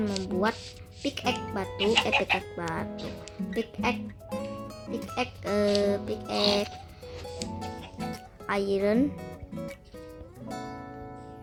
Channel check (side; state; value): both; identical; correlation 1.00